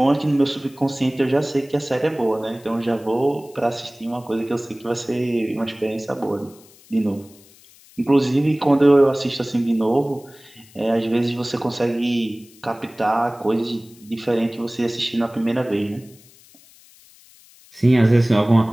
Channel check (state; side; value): noise; left; hiss, 26 dB below the sound